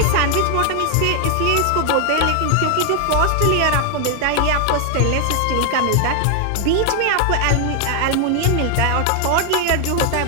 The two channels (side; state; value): both; different; correlation 0.00